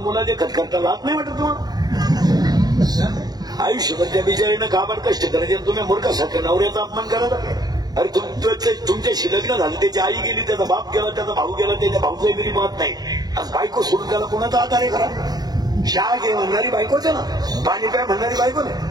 देखत करता लाज नाही वाटत तुम्हाला आयुष्यभर त्या बिचारीनं काबाड कष्ट करायचे आणि तुम्ही मूर्खासारखं नवऱ्याचा अपमान करायला. अरे तुमच्याशी लग्न झालं, त्याची आई गेली, त्याचा बाप गेला, त्याचा भाऊ गेला, त्याच्या भाऊचाही घरी पाहत नाही. आज बायको सोडून त्याला कोणाचा आधार आहे करा. चहा घे म्हणणारी बायकोच आहे ना, पाणी प्या म्हणणारी बायको नाही.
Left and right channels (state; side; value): late; left; 0.19 ms